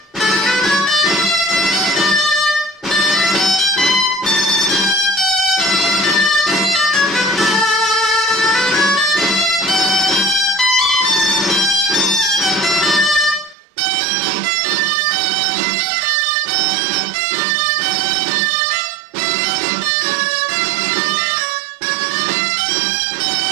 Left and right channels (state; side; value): drops out; left; at 13.6 s